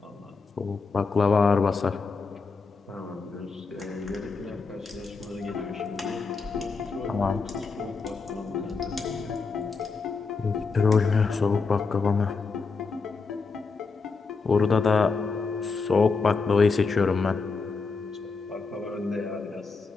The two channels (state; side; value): quieter; right; 4.5 dB